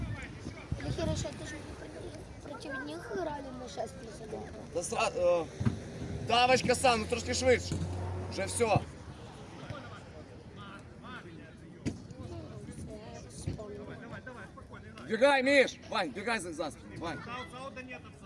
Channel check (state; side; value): identical; both; correlation 1.00